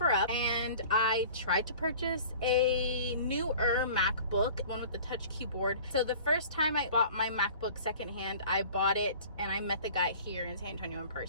and I tried to purchase a newer MacBook, one with the touch keyboard. So the first time I bought my MacBook secondhand, I bought it and I met the guy here in San Antonio in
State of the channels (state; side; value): inverted; both; correlation -0.45